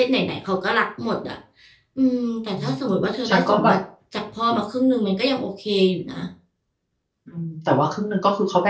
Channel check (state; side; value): identical; both; correlation 1.00